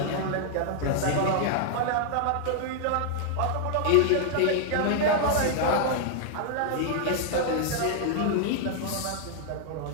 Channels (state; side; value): different; both; correlation 0.00